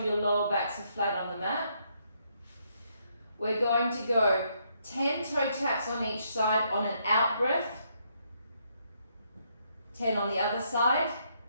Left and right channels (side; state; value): both; inverted; correlation -0.74